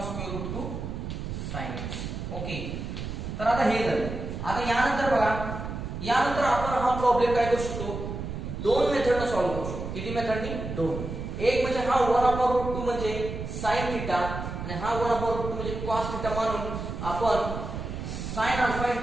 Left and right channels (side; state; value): right; noise; rumble, 6 dB below the sound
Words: square root 2 sin x. Okay, तर आता हे झालं. आता यानंतर बघा यानंतर आपण हा प्रॉब्लेम काय करू शकतो 2 मेथडने सॉल्व्ह करू शकतो. किती मेथडनी 2. एक म्हणजे हा 1 अपॉन रूट 2 म्हणजे sin थीटा आणि हा 1 अपॉन रूट 2 म्हणजे cos थीटा मानून आपण sign alpha